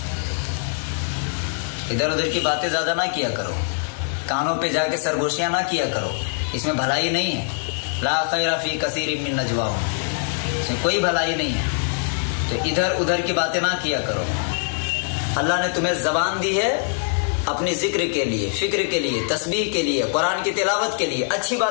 इधर उधर की बातें ज्यादा ना किया करो, कानों पे जाके सरगोशियां ना किया करो, इसमें भलाई नहीं है। ला खैरा फी कसीरिम मिन नजवाहुम, इसमें कोई भलाई नहीं है, तो इधर उधर की बातें ना किया करो। अल्लाह ने तुम्हें जबान दी है अपनी जिक्र के लिए, फिक्र के लिए, तस्बीह के लिए, कुरान की तिलावत के लिए, अच्छी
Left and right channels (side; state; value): right; silent; 63 dB below the other